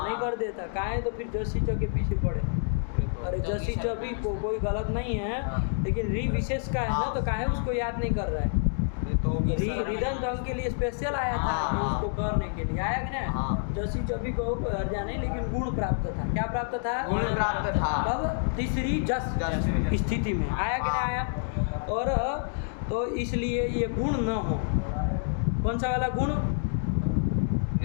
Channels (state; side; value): silent; right; digital silence